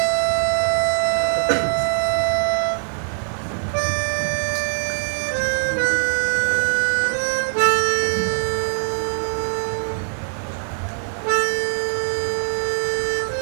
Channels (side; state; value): left; silent; 62 dB below the other